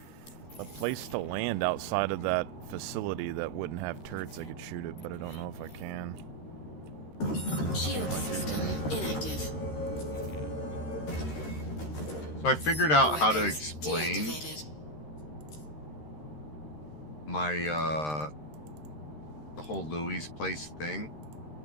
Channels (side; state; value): right; late; 13 ms